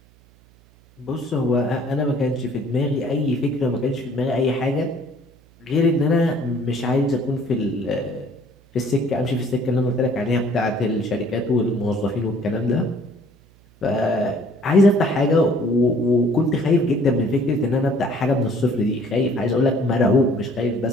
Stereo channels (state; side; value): noise; right; hum, 29 dB below the sound